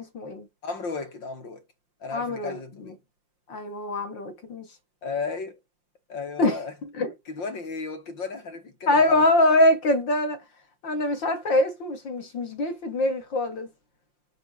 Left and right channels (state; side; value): late; right; 5.7 ms